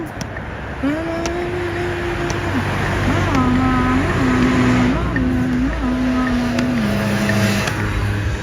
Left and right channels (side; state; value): both; identical; correlation 1.00